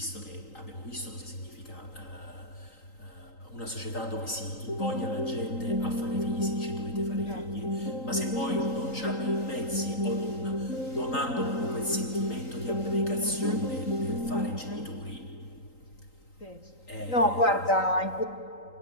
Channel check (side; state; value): right; late; 3.8 ms